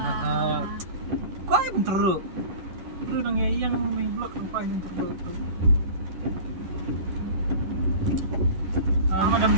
Kau yang teruk nang yang main blok apa yang teruk itu. Madam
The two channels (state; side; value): late; left; 11 ms